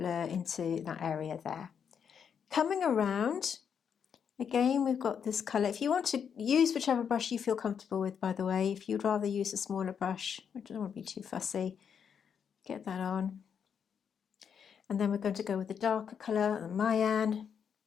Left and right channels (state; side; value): quieter; right; 7.4 dB